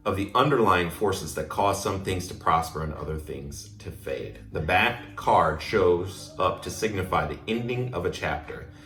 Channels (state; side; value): identical; both; correlation 1.00